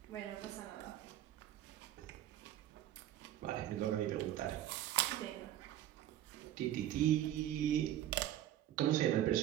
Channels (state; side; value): quieter; left; 12.4 dB